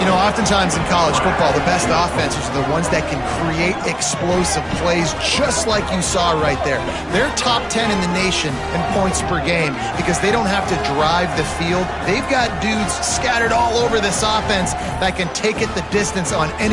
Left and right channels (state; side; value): identical; both; correlation 1.00